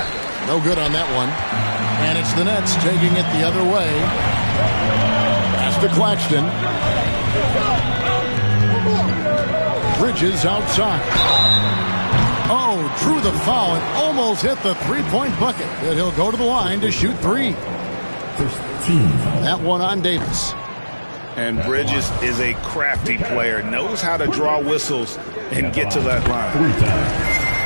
No good on that one. And it's the Nets taking it the other way. Pass to Claxton. Bridges outside. Oh, drew the foul and almost hit the three-point bucket. But he'll go to the line to shoot three. That one on Davis. And Bridges is a crafty player. Knows how to draw whistles and get to that line.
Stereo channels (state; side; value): inverted; both; correlation -1.00